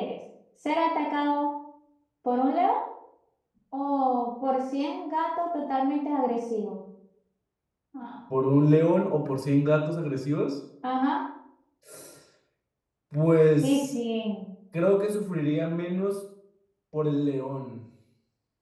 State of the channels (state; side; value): identical; both; correlation 1.00